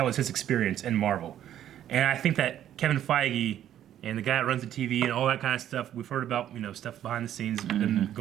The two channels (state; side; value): quieter; left; 11.2 dB